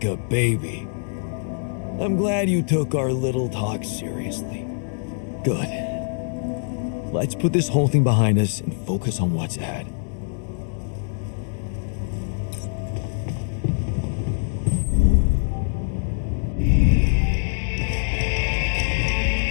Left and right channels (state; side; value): silent; right; digital silence